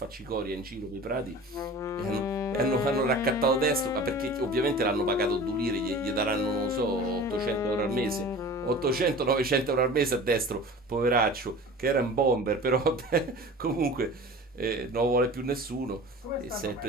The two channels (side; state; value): both; normal; correlation 0.39